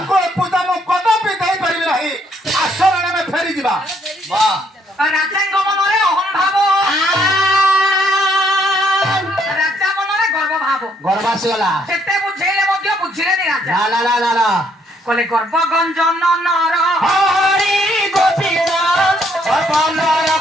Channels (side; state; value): both; normal; correlation 0.70